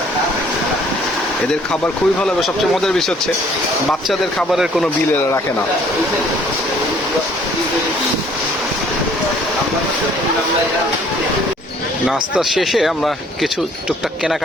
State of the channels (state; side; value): normal; both; correlation 0.59